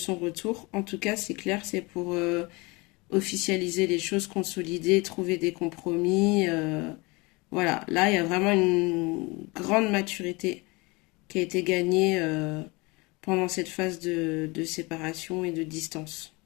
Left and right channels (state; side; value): quieter; right; 25.8 dB